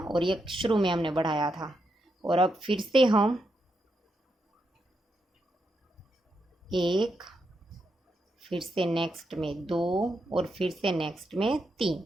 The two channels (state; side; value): normal; both; correlation 0.83